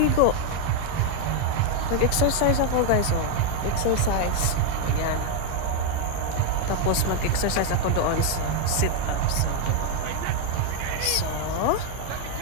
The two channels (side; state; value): both; different; correlation 0.01